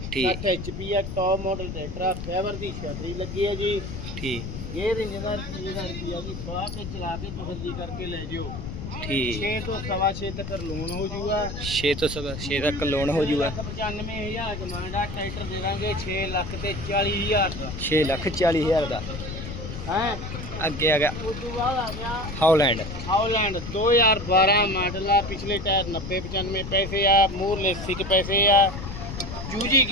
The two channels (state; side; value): noise; left; rumble, 8 dB below the sound